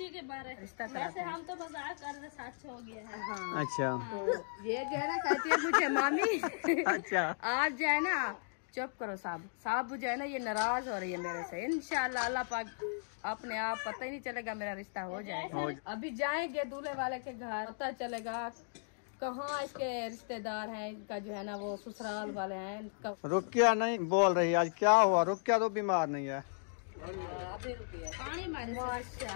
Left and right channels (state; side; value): silent; right; digital silence